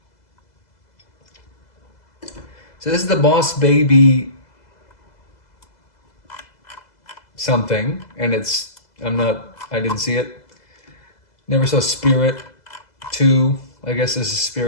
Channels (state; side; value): late; right; 2.0 ms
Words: So this is the Boss Baby something, and I didn't see it. Never saw Spirit 2. I guess this is